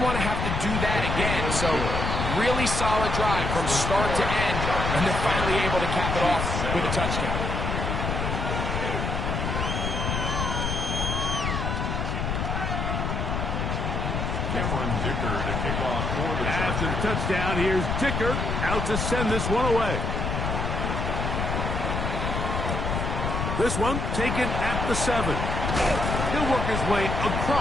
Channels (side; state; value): left; noise; rumble, 1 dB below the sound